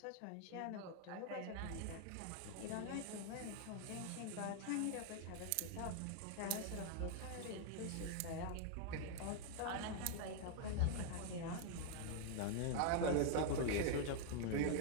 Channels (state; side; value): different; both; correlation 0.00